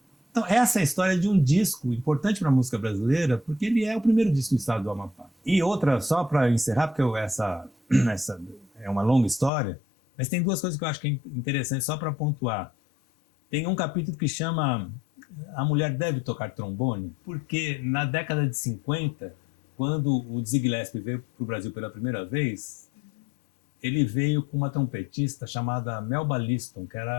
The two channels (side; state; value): right; drops out; at 9.5 s